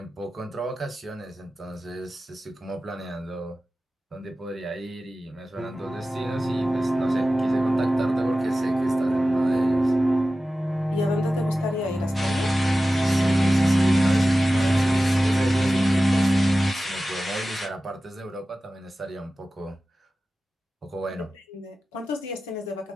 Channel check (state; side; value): normal; both; correlation 0.95